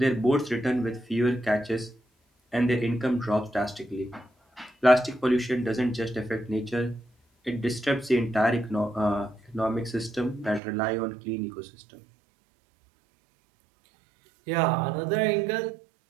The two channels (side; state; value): left; drops out; at 10.6 s